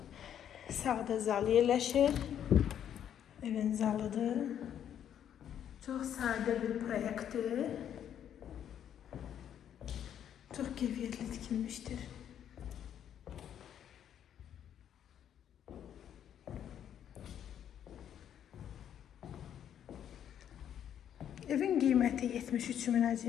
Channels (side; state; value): right; quieter; 9.7 dB